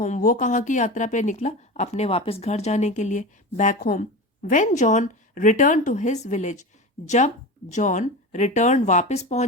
वो कहाँ की यात्रा पे निकला, अपने वापस घर जाने के लिए, back home. When John return to his village, जब जॉन रिटर्न वापस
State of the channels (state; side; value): normal; both; correlation 0.26